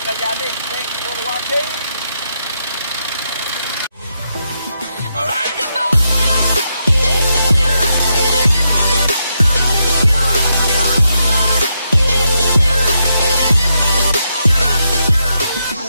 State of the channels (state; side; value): inverted; both; correlation -0.82